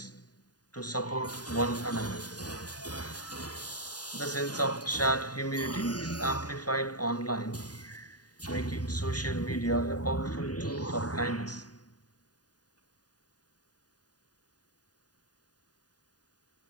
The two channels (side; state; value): right; late; 0.68 ms